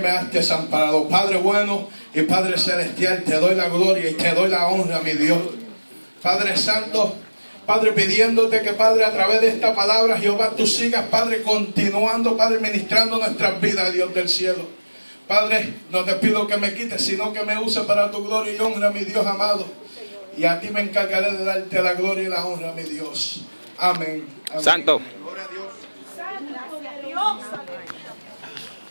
has desamparado? Padre bueno y Padre celestial, te doy la gloria y te doy la honra, mi Dios. Padre santo, Padre, pidiéndote que, Padre, a través de esta palabra, Jehová, tú sigas, Padre, continuando, Padre, ministrando nuestras vidas, Dios del cielo. Padre, no te pido que me quites, sino que me uses para tu gloria y honra, mi Dios amado. Y a ti me encargaré de darte la gloria y la honra, mi Dios. Amén. Amén. Santo.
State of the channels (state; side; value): inverted; both; correlation -1.00